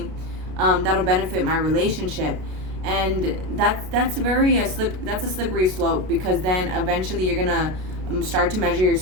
that'll benefit my relationship. And that's a slippery slope, because then eventually you're gonna start to measure your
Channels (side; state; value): left; late; 32 ms